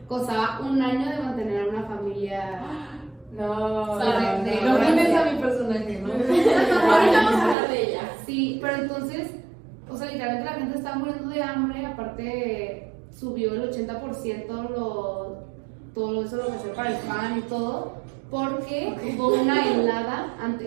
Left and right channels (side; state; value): left; drops out; at 7.6 s